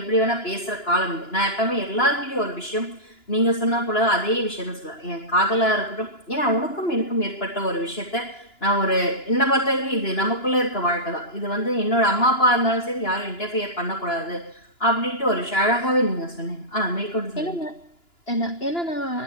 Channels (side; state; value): right; late; 2.9 ms